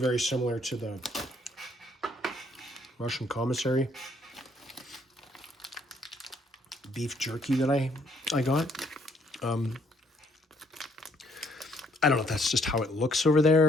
similar to the Russian commissary beef jerky that I got. I don't know if that's just how it looks over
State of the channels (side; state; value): both; normal; correlation 0.67